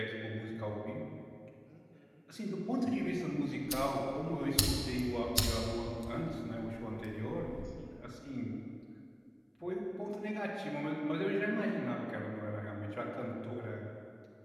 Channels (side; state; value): both; identical; correlation 1.00